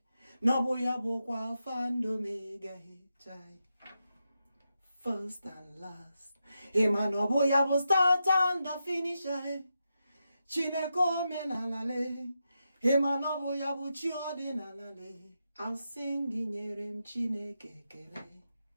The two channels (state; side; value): inverted; both; correlation -0.87